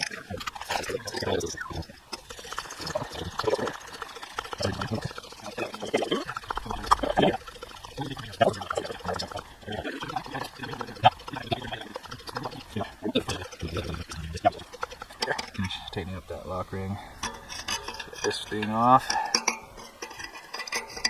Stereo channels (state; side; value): identical; both; correlation 1.00